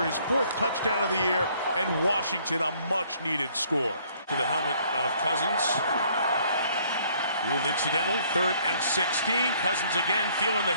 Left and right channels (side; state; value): both; inverted; correlation -0.62